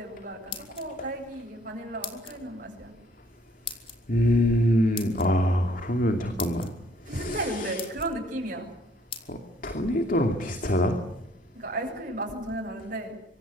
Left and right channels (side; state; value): both; normal; correlation 0.62